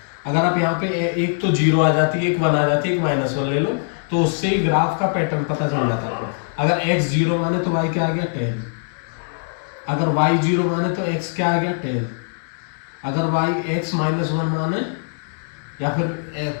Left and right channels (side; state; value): right; silent; digital silence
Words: अगर आप यहाँ पे एक तो 0 आ जाती है, एक 1 आ जाती है, एक -1 ले लो, तो उससे ही ग्राफ का पैटर्न पता चल जाता है। अगर x 0 माने तो y क्या आ गया 10, अगर y 0 माने तो x क्या आ गया 10, अगर y x -1 माने या फिर